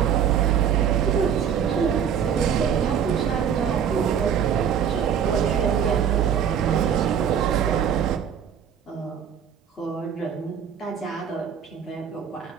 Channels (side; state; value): left; quieter; 8.1 dB